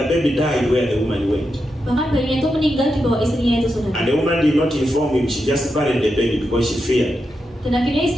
the baby died where the woman went. Bahkan bayinya itu meninggal di bawah istrinya itu, saudara. And the woman did not inform him, she just buried the baby because she feared. Dan akhirnya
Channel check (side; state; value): both; normal; correlation 0.87